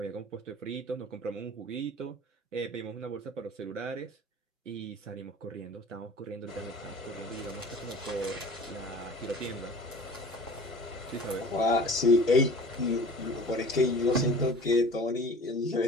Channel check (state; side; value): normal; both; correlation 0.43